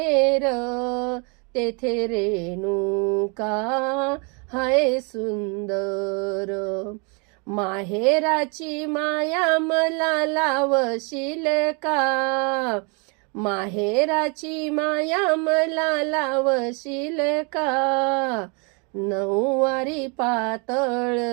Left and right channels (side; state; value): left; quieter; 34.0 dB